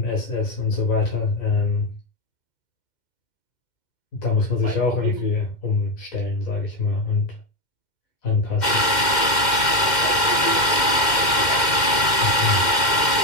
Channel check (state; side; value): late; right; 2.1 ms